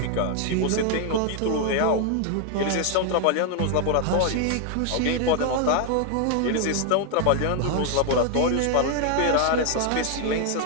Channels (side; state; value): both; different; correlation 0.00